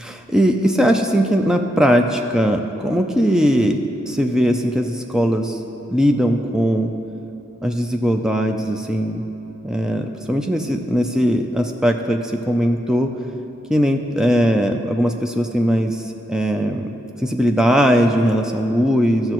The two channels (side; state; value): both; normal; correlation 0.84